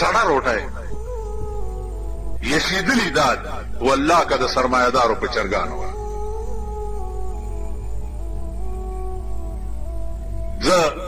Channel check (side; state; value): both; identical; correlation 1.00